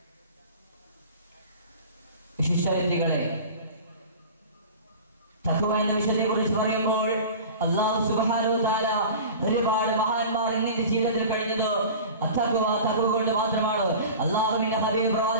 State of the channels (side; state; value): both; inverted; correlation -0.37